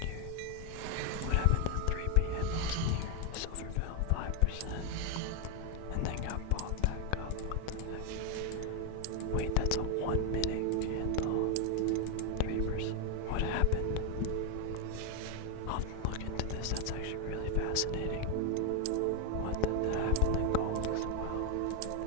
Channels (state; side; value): different; both; correlation 0.01